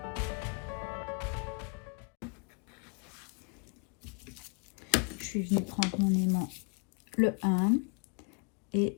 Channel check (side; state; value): right; quieter; 35.8 dB